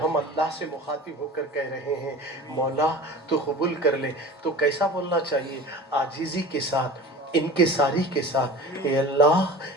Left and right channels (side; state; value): both; normal; correlation 0.37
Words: हम अल्लाह से मुखातिब होकर कह रहे हैं मौला तो कबूल कर ले, तो कैसा बोलना चाहिए? आजीज़ी के साथ, इनके सारी के साथ, ए